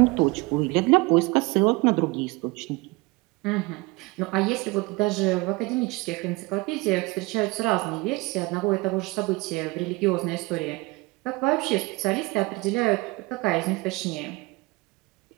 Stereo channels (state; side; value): quieter; left; 23.8 dB